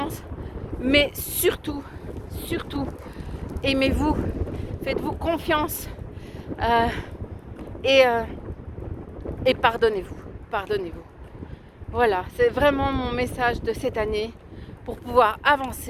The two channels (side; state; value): both; identical; correlation 1.00